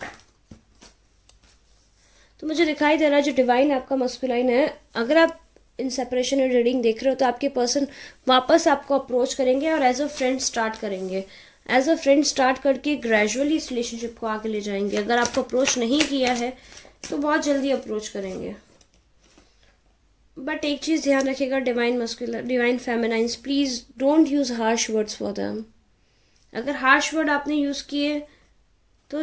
तो मुझे दिखाई दे रहा है जो डिवाइन आपका मस्कुलाइन है, अगर आप इन सेपरेशन और रीडिंग देख रहे हो तो आपके पर्सन वापस आपको अप्रोच करेंगे और एज अ फ्रेंड स्टार्ट करेंगे। एज अ फ्रेंड स्टार्ट करके ग्रेजुअली इस रिलेशनशिप को आगे ले जाएंगे। अगर आपको अप्रोच नहीं किया है तो बहुत जल्दी अप्रोच करेंगे। बट एक चीज़ ध्यान रखिएगा, divine masculine divine feminines, please don't use harsh words for them. अगर हार्श वर्ड आपने यूज़ किए तो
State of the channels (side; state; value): both; identical; correlation 1.00